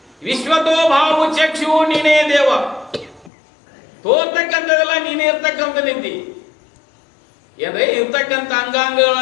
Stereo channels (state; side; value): drops out; right; at 3.3 s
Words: ವಿಶ್ವತೋ ಭಾವು ಚಕ್ಷು ನೀನೇ ದೇವ, ತೋರ್ತಕ್ಕಂಥದ್ದೆಲ್ಲ ನೀನೇ ಇರ್ತಕ್ಕಂಥ ನಿಂತಿ. ಏನ್ರಿ ಇರ್ತಕ್ಕಂಥ